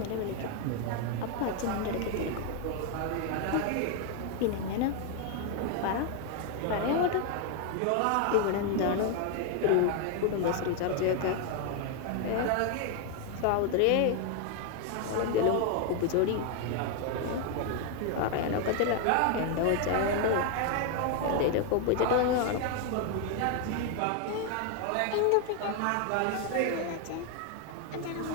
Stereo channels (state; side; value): different; both; correlation 0.01